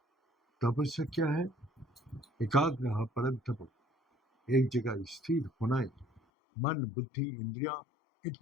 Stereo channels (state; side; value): drops out; right; at 6.2 s